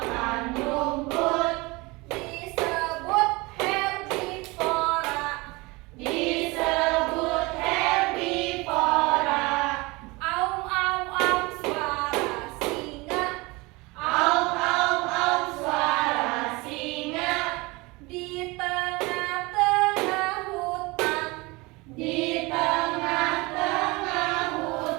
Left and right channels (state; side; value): quieter; left; 24.2 dB